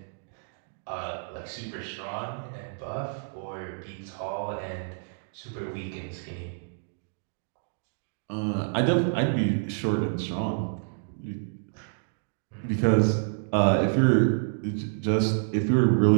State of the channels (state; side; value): silent; left; digital silence